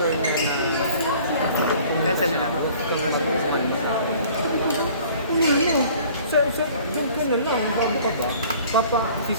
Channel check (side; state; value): both; inverted; correlation -0.51